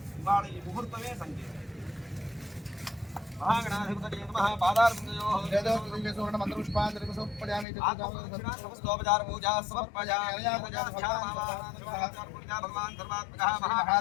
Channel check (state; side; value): drops out; right; at 7.7 s